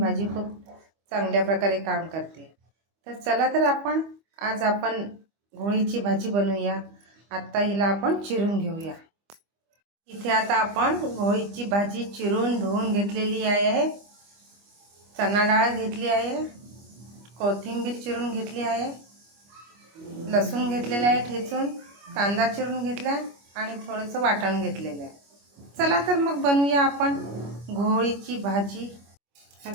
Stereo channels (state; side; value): late; left; 25 ms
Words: खूप चांगल्या प्रकारे काम करते. तर चला तर आज आपण घोळीची भाजी बनवूया. आत्ता हिला आपण चिरून घेऊया. इथे आता आपण घोळीची भाजी चिरून धुवून घेतलेली आहे. चणा डाळ घेतली आहे, कोथिंबीर चिरून घेतली आहे, लसूण घेतलेला आहे ठेचून, कांदा चिरून घेतला आणि थोडंसं वाटण घेतलेलं आहे. चला तर मग बनवूया आपण घोळीची भाजी.